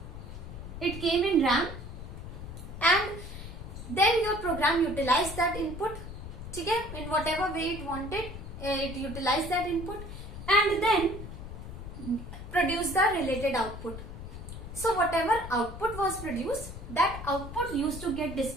It came in RAM, and then your program utilized that input. ठीक है? In whatever way it wanted, it utilized that input and then produced the related output. So whatever output was produced, that output used to get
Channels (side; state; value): left; noise; rumble, 10 dB below the sound